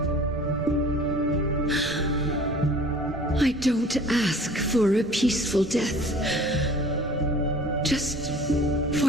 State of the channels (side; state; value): both; normal; correlation 0.48